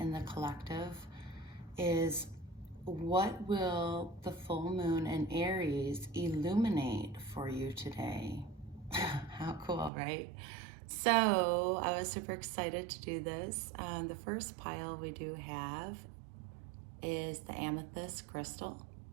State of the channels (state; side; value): drops out; left; at 9.9 s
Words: the collective is what will the full moon in Aries illuminate for you today? How cool, right? So I was super excited to do this. The first pile we do have is the amethyst crystal.